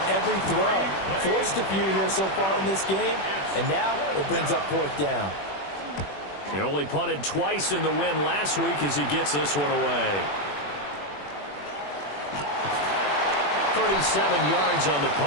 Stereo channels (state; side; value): late; right; 21 ms